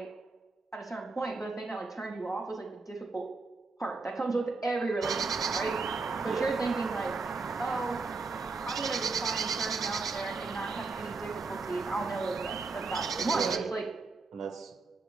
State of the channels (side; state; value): left; quieter; 4.0 dB